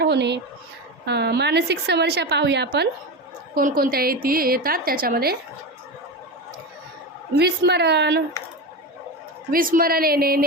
होणे. मानसिक समस्या पाहूया आपण कोणकोणत्या येतात त्याच्यामध्ये. विस्मरण येणे,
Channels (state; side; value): normal; both; correlation 0.21